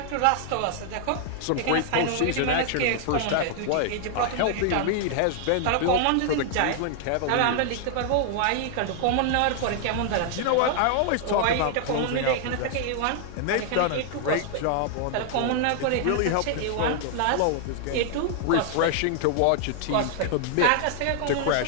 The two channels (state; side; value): different; both; correlation 0.00